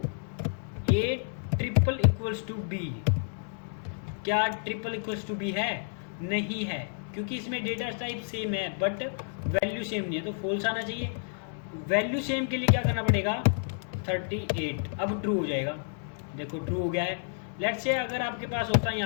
a triple equals to b, क्या ट्रिपल इक्वल्स टू b है, नहीं है, क्योंकि इसमें डेटा टाइप सेम है बट वैल्यू सेम नहीं है, तो फॉल्स आना चाहिए। वैल्यू सेम के लिए क्या करना पड़ेगा, 38, अब ट्रू हो जाएगा, देखो ट्रू हो गया है। लेट्स से अगर आपके पास होता है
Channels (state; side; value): silent; right; digital silence